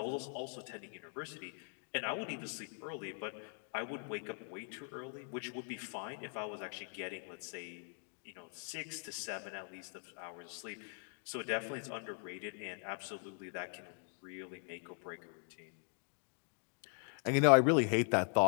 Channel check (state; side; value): silent; right; 51 dB below the other